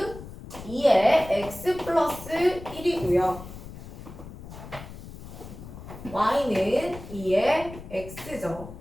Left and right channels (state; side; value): noise; left; rumble, 13 dB below the sound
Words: 2의 x 플러스 1이고요. y는 2의 x죠.